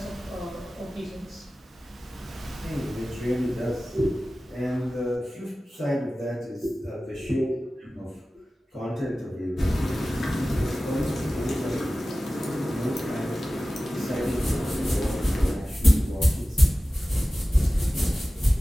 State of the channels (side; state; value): both; normal; correlation 0.96